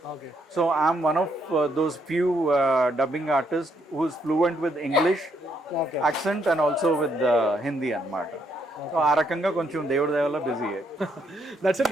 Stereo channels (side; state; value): both; normal; correlation 0.74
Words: So I'm one of those few dubbing artist who is fluent with English accent and also with Hindi అనమాట. సో ఆ రకంగా కొంచెం దేవుడి దయ వల్ల busy. That's it